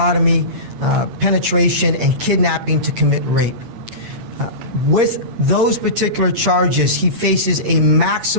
penetration, and kidnapping to commit rape. With those particular charges, he faces a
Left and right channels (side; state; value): left; late; 8.6 ms